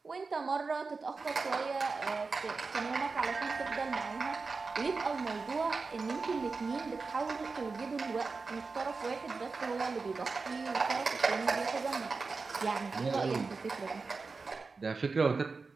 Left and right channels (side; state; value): left; quieter; 4.3 dB